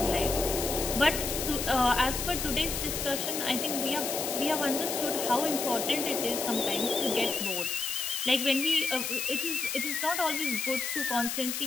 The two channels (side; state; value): left; noise; hiss, 3 dB below the sound